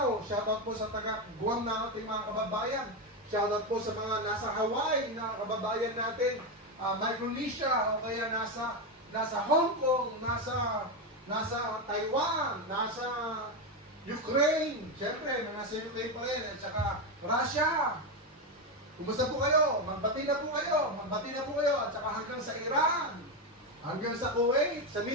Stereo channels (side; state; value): both; normal; correlation 0.11